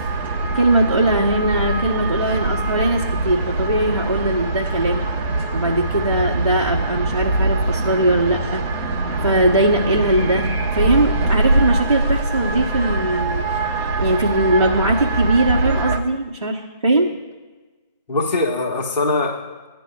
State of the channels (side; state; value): both; inverted; correlation -0.63